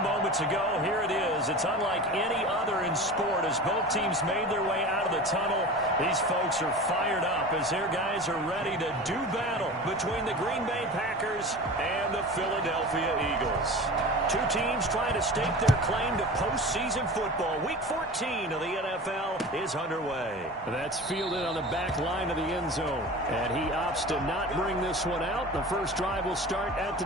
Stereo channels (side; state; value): both; normal; correlation 0.34